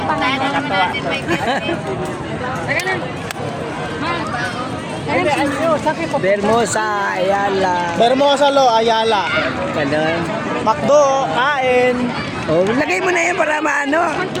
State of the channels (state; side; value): identical; both; correlation 1.00